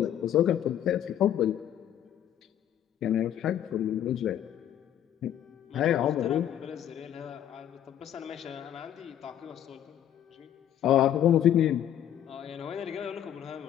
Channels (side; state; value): right; quieter; 10.6 dB